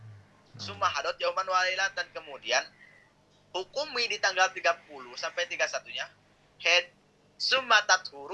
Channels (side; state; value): both; identical; correlation 1.00